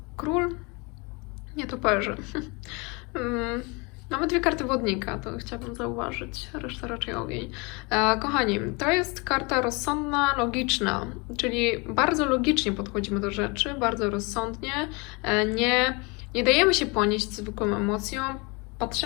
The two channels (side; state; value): right; quieter; 28.9 dB